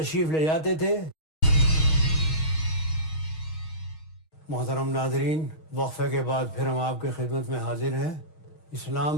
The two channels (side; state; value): right; late; 6.4 ms